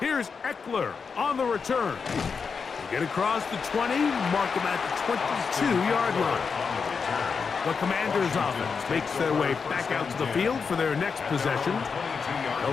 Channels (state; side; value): quieter; right; 5.5 dB